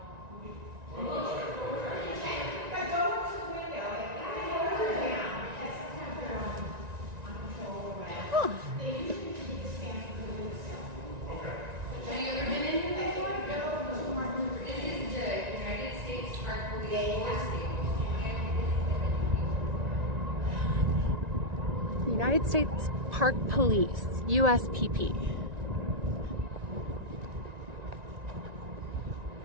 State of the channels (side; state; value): left; late; 1.9 ms